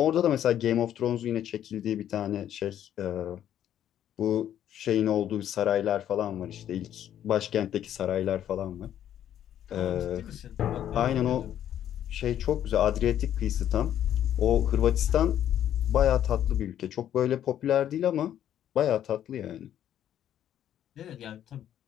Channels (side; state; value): right; quieter; 10.8 dB